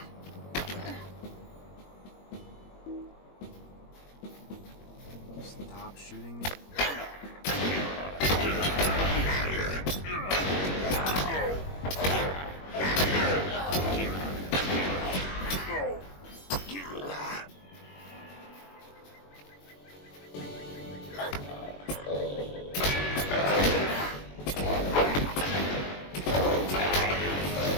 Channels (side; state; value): right; late; 21 ms